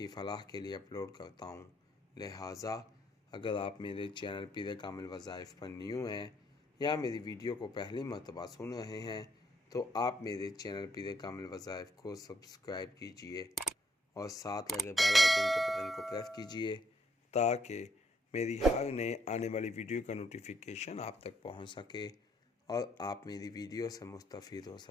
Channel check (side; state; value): both; normal; correlation 0.71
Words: فلاح کے لیے اپلوڈ کرتا ہوں، لہٰذا اگر آپ میرے چینل پیر کامل وظائف پر نیو ہیں یا میری ویڈیو کو پہلی مرتبہ سن رہے ہیں تو آپ میرے چینل پیر کامل وظائف کو سبسکرائب کیجئے اور ساتھ لگے بیل آئیکن کے بٹن کو پریس کیجئے تاکہ میری ہر نئے آنے والی ویڈیو کا نوٹیفیکیشن آپ تک پہنچ سکے اور آپ میری ویڈیو سے مستفید ہو